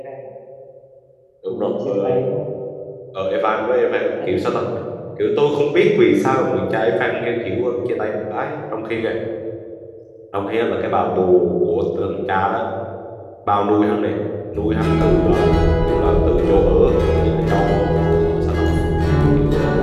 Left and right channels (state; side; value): identical; both; correlation 1.00